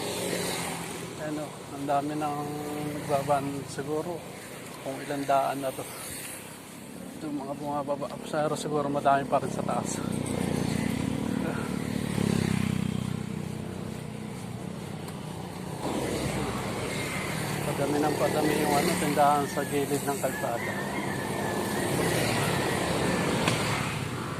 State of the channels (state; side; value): identical; both; correlation 1.00